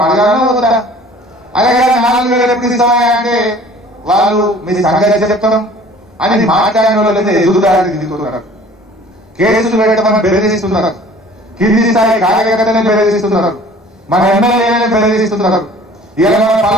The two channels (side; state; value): both; normal; correlation 0.49